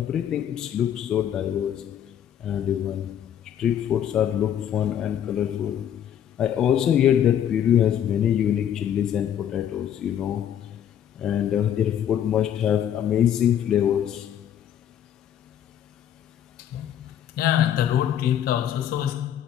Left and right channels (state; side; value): quieter; right; 9.9 dB